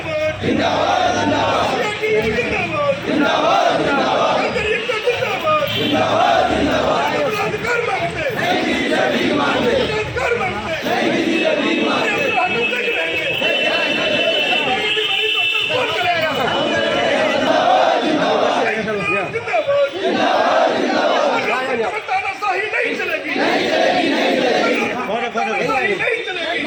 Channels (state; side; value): identical; both; correlation 1.00